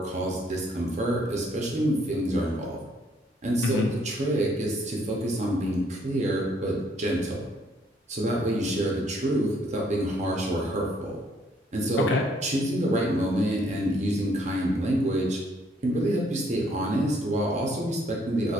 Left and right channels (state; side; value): normal; both; correlation 0.67